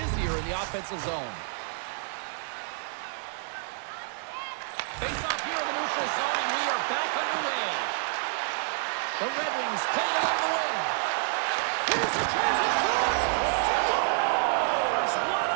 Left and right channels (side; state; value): left; silent; digital silence